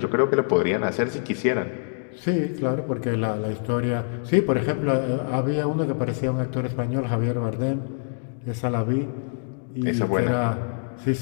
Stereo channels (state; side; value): silent; right; digital silence